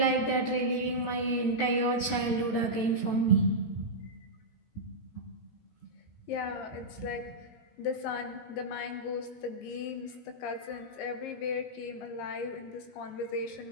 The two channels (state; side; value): late; right; 17 ms